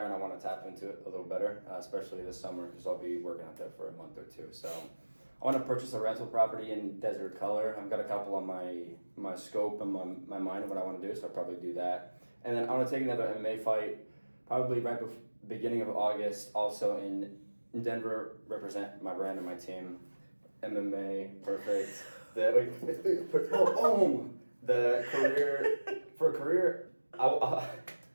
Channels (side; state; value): both; inverted; correlation -1.00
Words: and I want to tap into it a little better, especially this summer, because I'll be working out there for a month or two. So I want to purchase a rental property in Desert Color. I've got a couple on my scope and my mind of what I want to do, so I'll probably do that. And then I want to take another MMA fight, probably right before beginning of August, also in Denver, represent my brand and my team. MMA, perfect. The career,